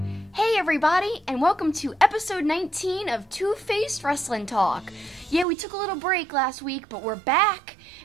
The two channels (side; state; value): left; drops out; at 5.5 s